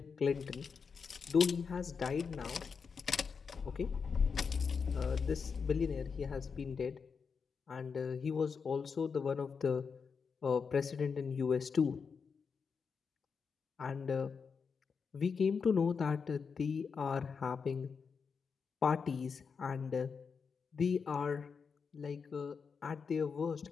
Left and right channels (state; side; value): quieter; right; 5.7 dB